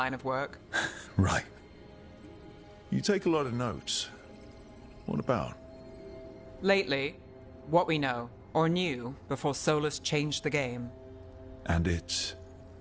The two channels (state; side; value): identical; both; correlation 1.00